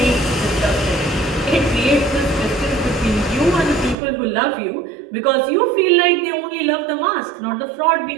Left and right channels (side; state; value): left; drops out; at 4.0 s